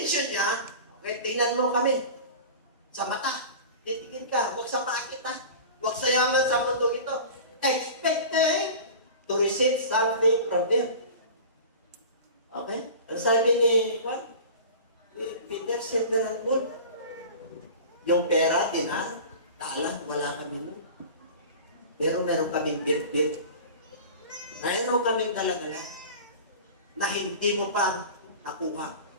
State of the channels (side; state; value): both; inverted; correlation -0.36